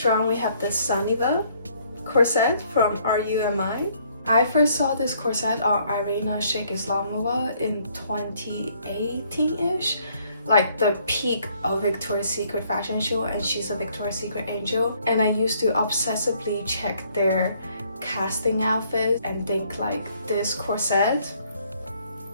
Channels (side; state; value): both; inverted; correlation -0.65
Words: we have the Sunniva corset from RUMI. I first saw this corset on Irina Sheikh Islamova in 2018-ish, like the peak of Victoria's Secret fashion show, and she's a Victoria's Secret angel. And I used to obsessively check their casting outfits and think like this corset